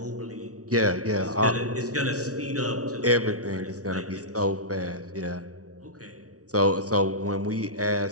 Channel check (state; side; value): late; left; 0.67 ms